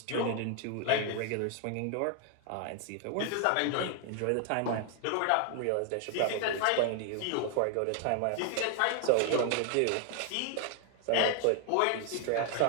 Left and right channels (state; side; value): different; both; correlation 0.00